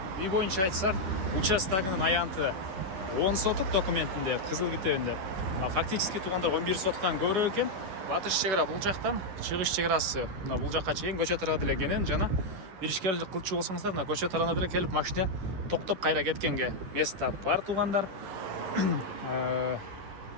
Үй боюнча айтсак, участогунун аянты 10 соток документинде, кызыл китебинде. Фактически туугандар 11 соттан көбүрөөк экен. Батыш чек ара бул жактан, чыгыш чек арасы мына бул жакка чейин көчө тарабы деле кенен жана бир ишкерлик кылчу болсоңуздар, мына көчө тарабына деле келип машина токтоп кайра кеткенге место бар туугандар.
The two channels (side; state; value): left; late; 10 ms